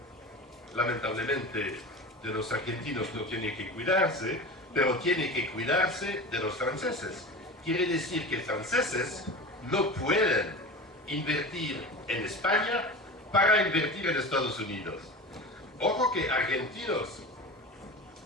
lamentablemente de los argentinos no tiene que cuidarse, pero tiene que cuidarse de los franceses. Quiere decir que franceses no pueden invertir en España para invertir en Estados Unidos. Ojo que argentinos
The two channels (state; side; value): normal; both; correlation 0.30